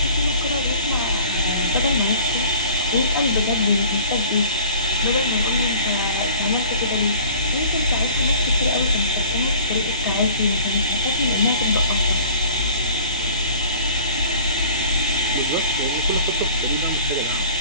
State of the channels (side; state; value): both; inverted; correlation -0.47